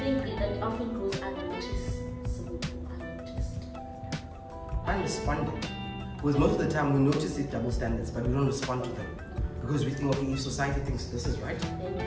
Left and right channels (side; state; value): both; identical; correlation 1.00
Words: it often goes unnoticed? Unresponded. Because most of the time we notice these double standards, but we don't respond to them. Because we think, okay, if society thinks this is right,